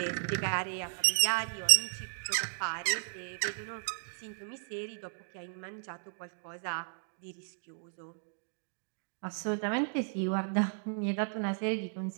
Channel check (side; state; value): left; silent; digital silence